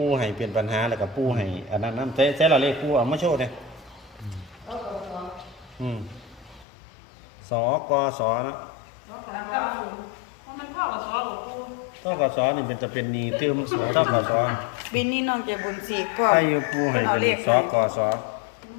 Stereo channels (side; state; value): right; drops out; at 6.7 s